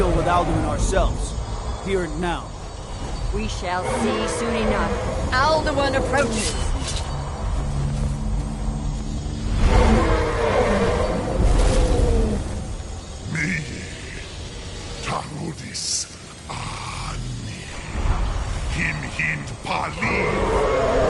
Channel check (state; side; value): identical; both; correlation 1.00